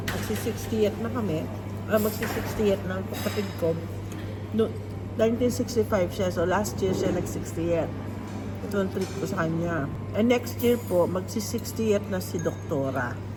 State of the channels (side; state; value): both; identical; correlation 1.00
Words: Magsi-60th na kami. Magsi-60th na ang kapatid ko. No, 1965 siya, so last year siya nag-60th. ito ang trip ko sa kanya. And next year po, magsi-60th na si Doktora.